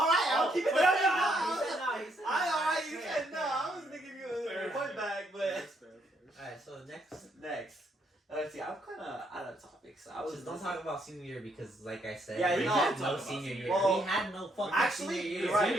I'll keep it Wait, there. No, he said no. He said no. Alright, you Fair, said no. fair. I was gonna give you Fair, a point fair. back, but. That's fair. Alright, so next. Next. Let's see, I'm kind of out of topic, so I was Just don't talk about senior year because, like I said, Yeah, we no, had talk no about senior senior year. year. We had no fucking Actually, senior you're year. right. Same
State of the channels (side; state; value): both; normal; correlation 0.73